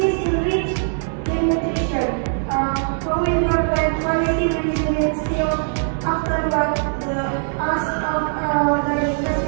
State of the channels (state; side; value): silent; left; digital silence